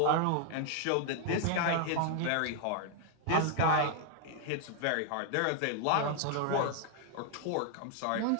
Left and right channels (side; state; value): both; different; correlation 0.00